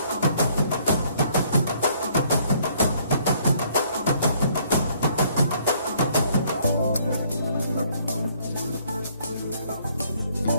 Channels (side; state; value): both; inverted; correlation -0.64